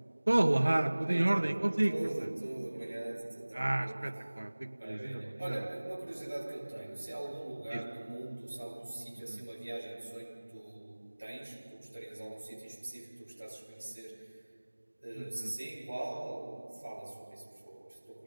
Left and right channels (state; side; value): inverted; both; correlation -1.00